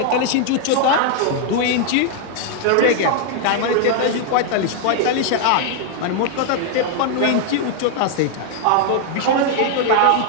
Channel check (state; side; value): different; both; correlation 0.00